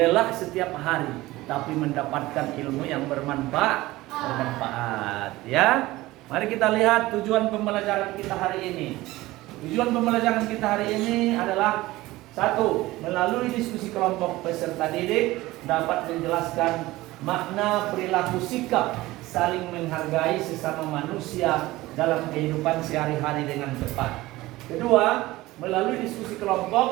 setiap hari, tapi mendapatkan ilmu yang bermanfaat. Ya, mari kita lihat tujuan pembelajaran kita hari ini. Tujuan pembelajaran kita hari ini adalah satu, melalui diskusi kelompok peserta didik dapat menjelaskan makna perilaku sikap saling menghargai sesama manusia dalam kehidupan sehari-hari dengan tepat. Kedua, melalui diskusi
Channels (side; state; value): left; quieter; 18.4 dB